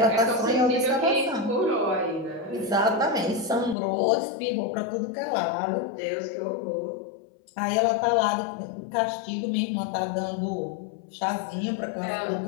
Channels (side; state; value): right; drops out; at 3.8 s